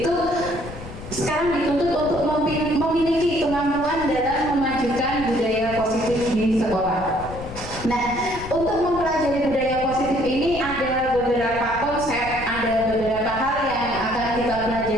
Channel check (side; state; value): left; noise; rumble, 12 dB below the sound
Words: sekarang dituntut untuk memiliki kemampuan dalam memajukan budaya positif di sekolah. Nah, untuk mempelajari budaya positif ini ada beberapa konsep, ada beberapa hal yang akan kita